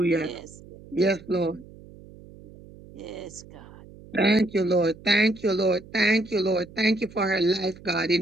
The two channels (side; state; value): right; noise; hum, 20 dB below the sound